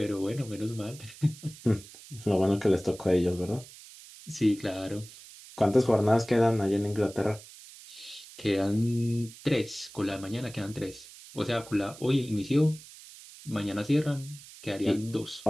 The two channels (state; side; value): noise; right; hiss, 18 dB below the sound